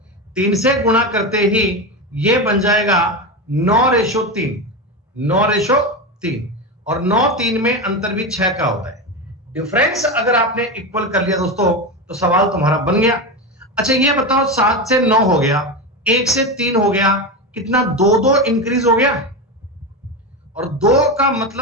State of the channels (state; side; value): normal; both; correlation 0.17